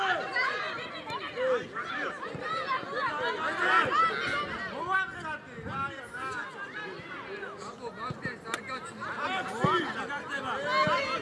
მოამხატე რა აბო მაგდეს არ გაჩნდა გაგდება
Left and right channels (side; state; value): both; identical; correlation 1.00